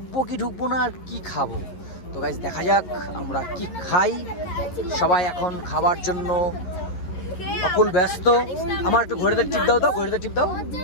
কি ঢুকবো না, আর কি খাবো। তো গাইজ দেখা যাক আমরা কি খাই। সবাই এখন খাবার জন্য অকুল ব্যস্ত। আমার একটু ঘড়িতে টিপ দাও তো, ঘড়িতে টিপ দাও।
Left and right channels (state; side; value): late; right; 11 ms